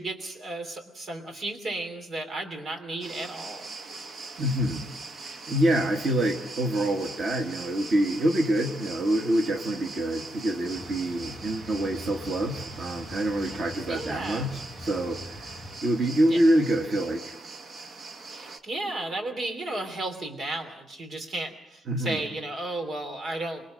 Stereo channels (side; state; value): both; normal; correlation 0.81